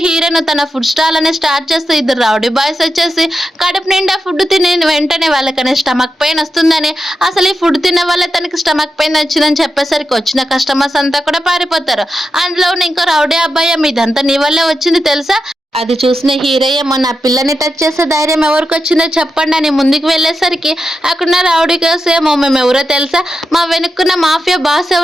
హీరోయిన్ తన ఫుడ్ స్టాల్ అనేది స్టార్ట్ చేస్తే ఇద్దరు రౌడీ బాయ్స్ వచ్చేసి కడుపు నిండా ఫుడ్ తిని వెంటనే వాళ్ళకనే స్టమక్ పెయిన్ వస్తుందని, అసలు ఈ ఫుడ్ తిన్న వల్ల తనకి స్టమక్ పెయిన్ వచ్చిందని చెప్పేసరికి వచ్చిన కస్టమర్స్ అంతా కూడా పారిపోతారు. అందులో ఇంకో రౌడీ అబ్బాయి ఇదంతా నీ వల్లే వచ్చింది తెలుసా, అది చూసిన హీరోయ్య నా పిల్లని టచ్ చేసే ధైర్యం ఎవరికి వచ్చిందో చెప్పండి అని ముందుకు వెళ్ళేసరికి అక్కడున్న రౌడీ గర్ల్స్ ఏమో మేము ఎవరో తెలుసా, మా వెనుక్కున్న మాఫియా బాస్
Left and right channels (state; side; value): normal; both; correlation 0.88